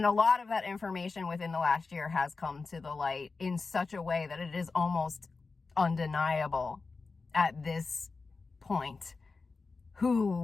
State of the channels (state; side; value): quieter; right; 4.2 dB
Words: a lot of that information within the last year has come to the light in such a way that it is almost undeniable at this point